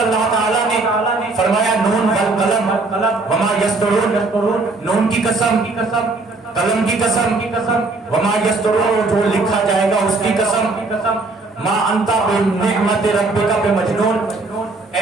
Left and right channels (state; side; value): quieter; left; 3.4 dB